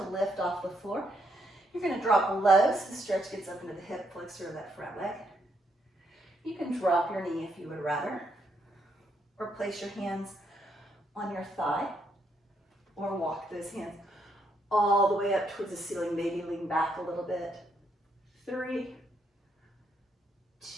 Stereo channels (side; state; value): both; normal; correlation 0.75